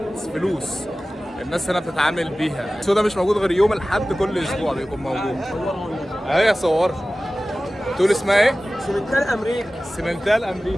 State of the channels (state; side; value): normal; both; correlation 0.96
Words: فلوس الناس هنا بتتعامل بيها. السوق ده مش موجود غير يوم الاحد كل اسبوع بيكون موجود. اهي صور. تقول اسمها ايه؟ سمنتال امريكا. سمنتال